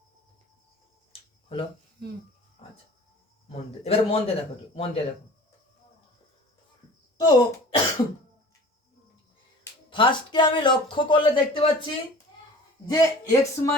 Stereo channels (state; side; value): normal; both; correlation 0.43